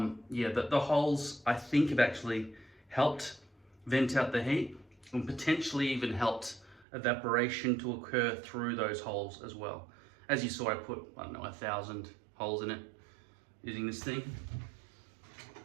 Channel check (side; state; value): left; drops out; at 6.9 s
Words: the holes I think have actually helped vent out the heat and potentially even helped evaporation to occur through those holes as well. As you saw, I put, I don't know, 1,000 holes in it using this thing.